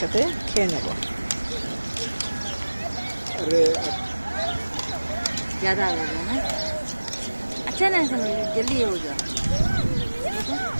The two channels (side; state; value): both; inverted; correlation -1.00